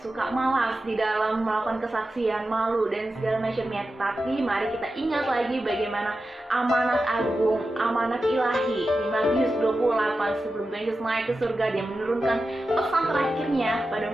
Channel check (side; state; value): both; normal; correlation 0.92